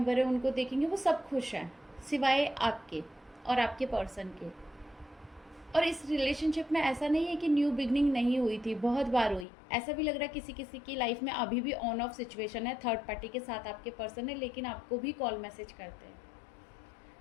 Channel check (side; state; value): right; drops out; at 9.5 s